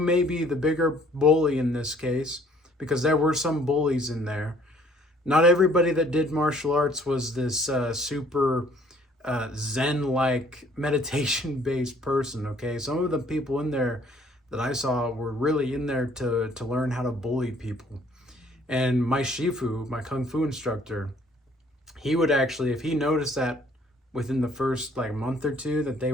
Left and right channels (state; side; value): normal; both; correlation 0.59